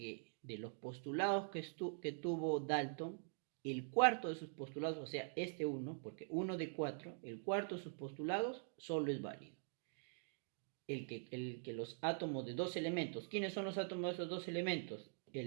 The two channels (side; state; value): left; silent; digital silence